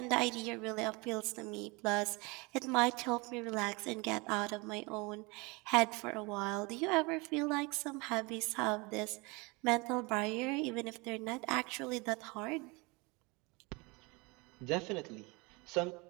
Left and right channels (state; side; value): quieter; left; 26.9 dB